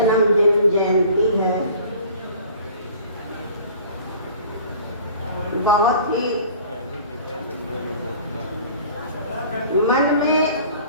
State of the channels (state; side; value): inverted; both; correlation -0.47